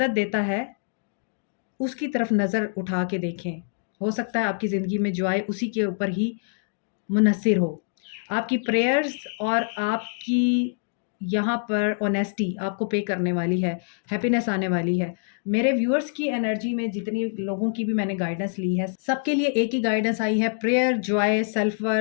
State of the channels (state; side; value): silent; right; 62 dB below the other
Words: देता है उसकी तरफ नज़र उठा के देखें। हो सकता है आपकी ज़िंदगी में जो आए उसी के ऊपर ही मुनहसिर हो। आपकी प्रेयर्स और आपकी यहाँ पर ऑनेस्टी आपको पे करने वाली है, हैप्पीनेस आने वाली है। मेरे व्यूअर्स की एनर्जी में जितनी लोगों की भी मैंने गाइडेंस ली है, सबके लिए एक ही गाइडेंस आई है, prayer, Joy, self